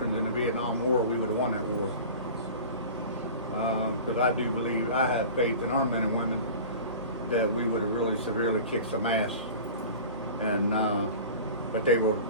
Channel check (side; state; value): both; inverted; correlation -0.37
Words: in the Vietnam War, we would have won that war. Because I do believe, I have faith in our men and women that we would have really severely kicked some ass. And but they